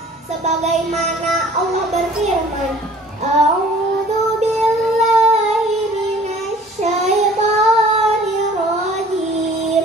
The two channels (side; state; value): both; normal; correlation 0.51